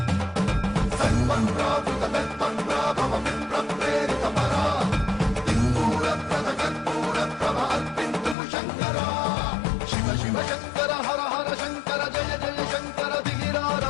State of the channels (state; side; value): drops out; right; at 8.3 s